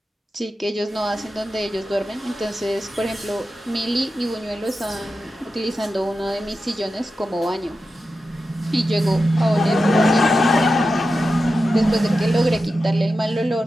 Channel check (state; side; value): normal; both; correlation 0.91